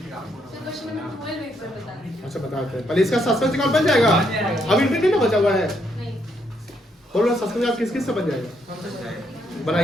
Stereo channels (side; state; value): both; normal; correlation 0.75